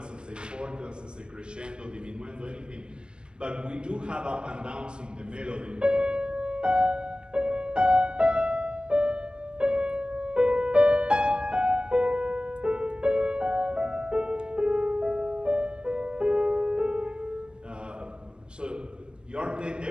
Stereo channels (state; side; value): late; left; 0.051 ms